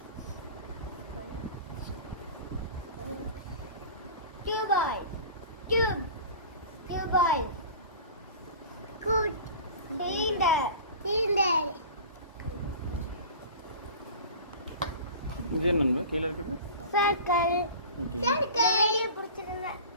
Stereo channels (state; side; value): inverted; both; correlation -0.38